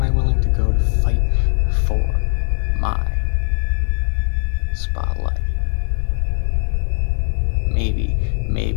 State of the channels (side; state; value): right; silent; 57 dB below the other